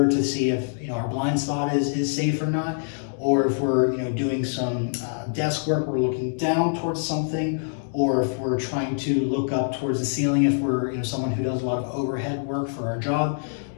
to see if our blind spot is safe or not. Or if we're doing some desk work, we're looking down towards something. Or if we're trying to look up towards the ceiling, if we're someone who does a lot of overhead work for our job,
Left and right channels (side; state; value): right; silent; digital silence